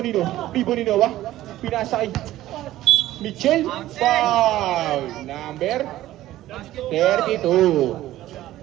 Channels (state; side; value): quieter; left; 14.8 dB